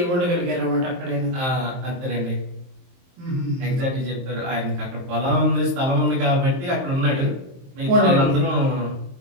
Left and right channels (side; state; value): left; late; 23 ms